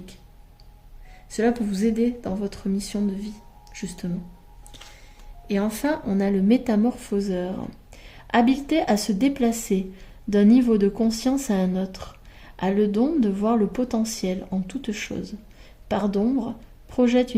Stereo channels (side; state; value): both; identical; correlation 1.00